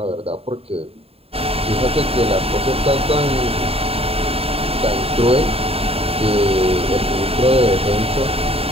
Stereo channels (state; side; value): late; left; 0.28 ms